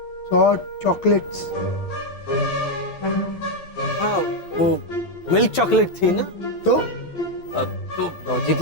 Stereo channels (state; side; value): late; right; 12 ms